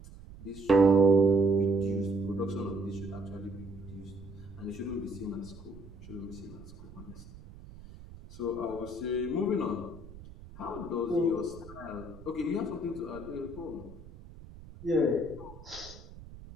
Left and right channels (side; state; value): right; noise; rumble, 17 dB below the sound